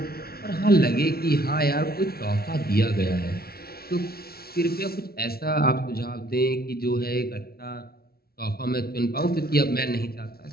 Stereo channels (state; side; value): late; right; 0.44 ms